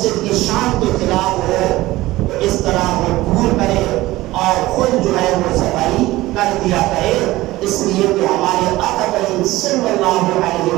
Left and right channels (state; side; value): quieter; left; 18.0 dB